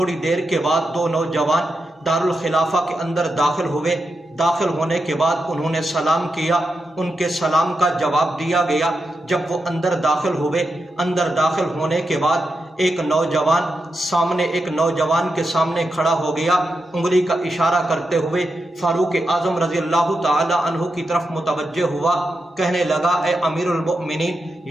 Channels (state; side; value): normal; both; correlation 0.87